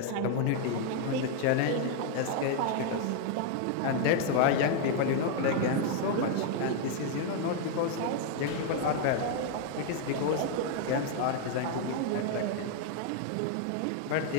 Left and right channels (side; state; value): both; different; correlation 0.00